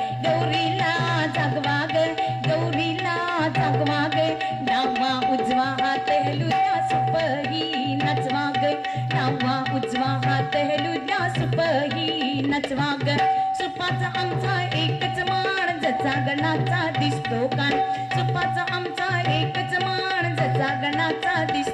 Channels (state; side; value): identical; both; correlation 1.00